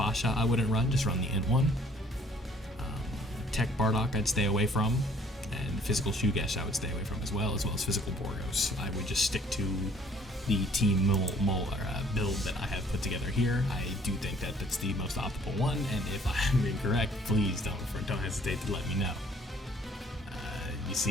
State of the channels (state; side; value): normal; both; correlation 0.59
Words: I wouldn't run, just run the Int one. Tech Bardock I'd stay away from, and Physical Shugesh I would stay away from as well as Physical Borgos. I would just stick to the Team build that I have put together here. I do think that that's the most optimal one, and if I'm incorrect, please don't hesitate to let me know. You